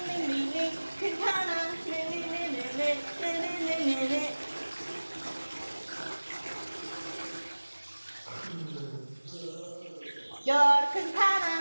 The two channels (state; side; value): inverted; both; correlation -1.00